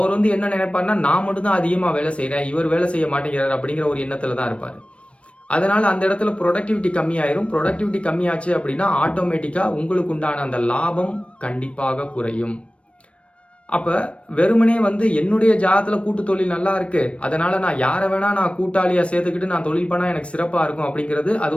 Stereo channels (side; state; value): right; late; 0.061 ms